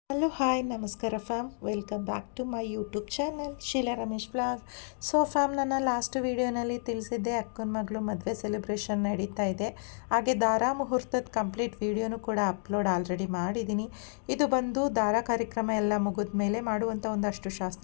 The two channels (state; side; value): silent; right; digital silence